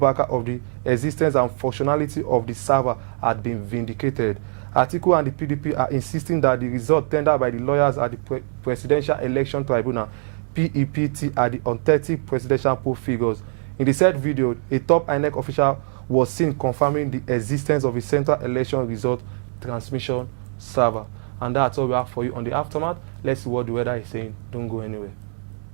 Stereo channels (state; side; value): silent; left; digital silence